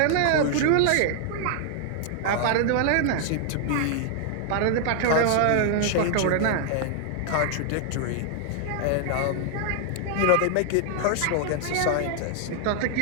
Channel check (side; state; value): both; different; correlation 0.00